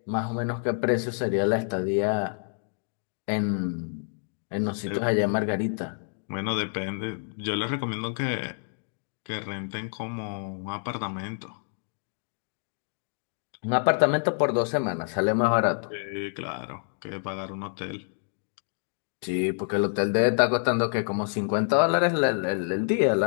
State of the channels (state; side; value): silent; right; digital silence